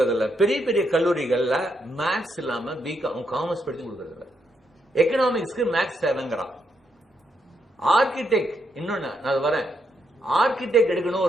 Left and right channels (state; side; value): normal; both; correlation 0.79